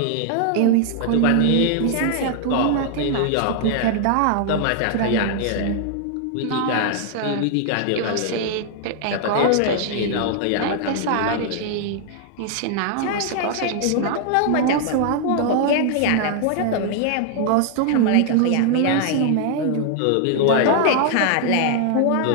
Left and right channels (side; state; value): both; different; correlation 0.00